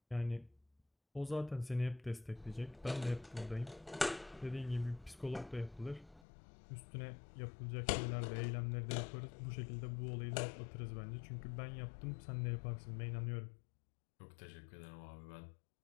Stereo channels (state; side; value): drops out; right; at 6.2 s